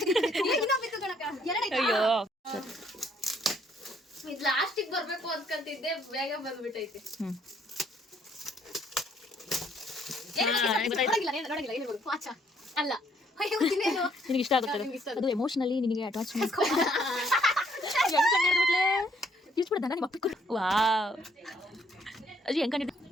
ಅಯ್ಯೋ ಲಾಸ್ಟಿಗೆ ಬರ್ಬೇಕು ಅನ್ಕೊಂತಿದ್ದೆ, ಬೇಗ ಬಂದ್ಬಿಟ್ಟೈತೆ. ಅಲ್ಲ ನಿನಗೆ ಇಷ್ಟ ಆಗುತ್ತೆ ಅದು, ಎಮೋಷನಲಿ ನಿನಗೆ ಅಟ್ಯಾಚ್ಮೆಂಟ್. ವಾವ್ ಅಜ್ಜಿ ಹೆಂಗ್ ಕಂಡಿದ್ದೆ?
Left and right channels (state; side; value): normal; both; correlation 0.67